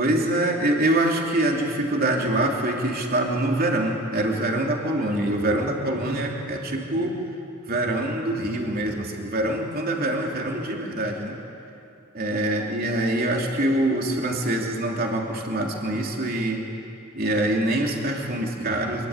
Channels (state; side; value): normal; both; correlation 0.42